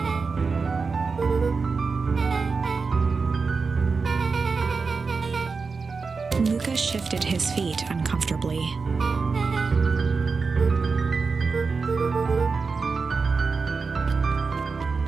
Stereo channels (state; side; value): quieter; left; 4.6 dB